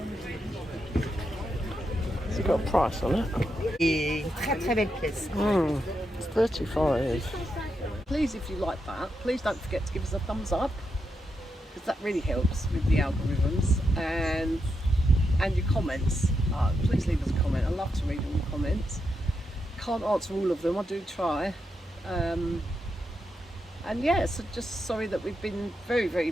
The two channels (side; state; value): both; normal; correlation 0.84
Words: Has it got a price on it? Très très belle pièce. It's 35. Please, if you like that, please don't forget to give us a thumbs up, because that really helps with the algorithms, and your comments. Please leave us a comment. I love to read all the comments. Can't answer all of them, I do try. And yeah, so just sorry that we've been very, very